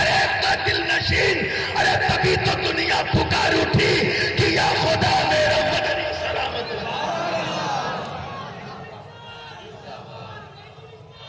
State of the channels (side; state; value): both; identical; correlation 1.00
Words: ایک کا دل نشین۔ ارے تبھی تو دنیا پکار اٹھی کہ یا خدا میرا مدنی سلامت